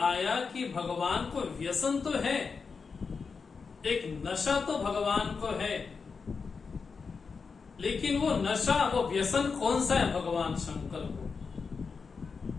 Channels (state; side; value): quieter; right; 5.2 dB